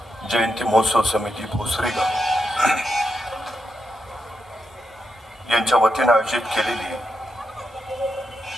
जयंती महोत्सव समिती भोसरीगाव यांच्या वतीने आयोजित केलेली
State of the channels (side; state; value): both; normal; correlation 0.85